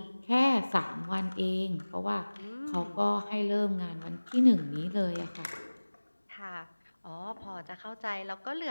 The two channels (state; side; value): inverted; both; correlation -1.00